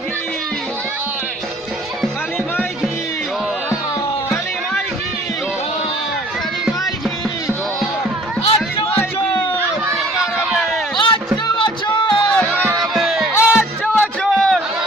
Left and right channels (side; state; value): both; normal; correlation 0.53